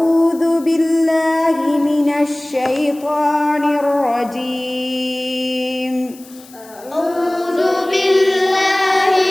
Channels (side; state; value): left; noise; hiss, 22 dB below the sound